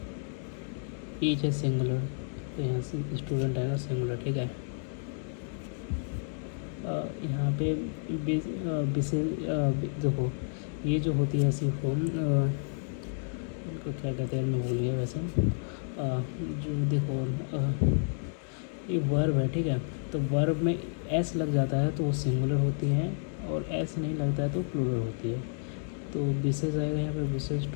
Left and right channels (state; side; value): silent; right; digital silence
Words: है सिंगुलर, तो यहाँ से स्टूडेंट आएगा सिंगुलर, ठीक है। यहाँ पे देखो ये जो होती है ऐसी फॉर्म, इनको क्या कहते हैं मैं भूल गया वैसे। जो देखो ये वर्ब है, ठीक है। तो वर्ब में एस लग जाता है तो वो सिंगुलर होती है, और एस नहीं लगता है तो प्लूरल होती है। तो विशेष आएगा यहाँ पर, विशेष